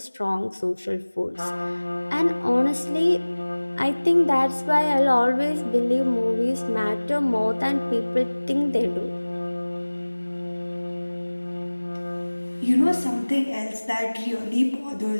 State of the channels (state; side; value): inverted; both; correlation -1.00